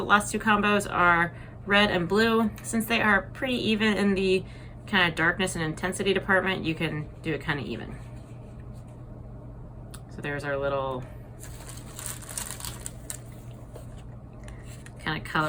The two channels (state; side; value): identical; both; correlation 1.00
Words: last two combos are red and blue. Since they are pretty even in the kind of darkness and intensity department, you can do it kind of even. So there's our little kind of